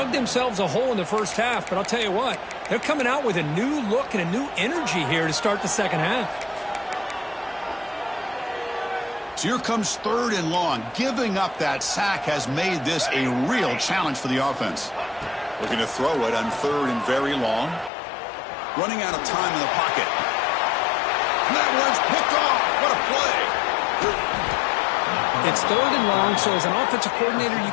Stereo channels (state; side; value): drops out; right; at 17.9 s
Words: themselves a hole in the first half, but I'll tell you what, they're coming out with a new look and a new energy here to start the second half. So here comes 3rd and long. Giving up that sack has made this a real challenge for the offense. Looking to throw it on 3rd and very long. Running out of time in the pocket. And that one's picked off. What a play. It's 3rd and long, so as an offensive coordinator, you